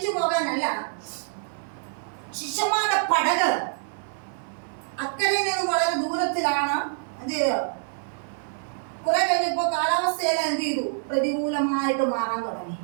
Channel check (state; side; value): silent; left; 61 dB below the other